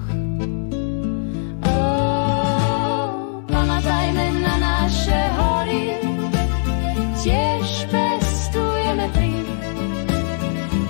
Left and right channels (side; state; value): right; silent; digital silence